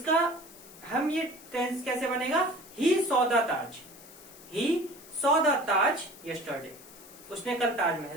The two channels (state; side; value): noise; left; hiss, 19 dB below the sound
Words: हम ये टेंस कैसे बनेगा, he saw the Taj, he saw the Taj yesterday, उसने कल